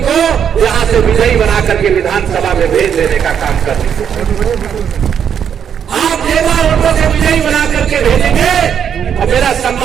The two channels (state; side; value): quieter; left; 8.2 dB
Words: यहां से विजयी बना करके विधानसभा में भेज देने का काम कर दीजिए। आप ज्यादा वोटों से विजयी बना करके भेजेंगे और मेरा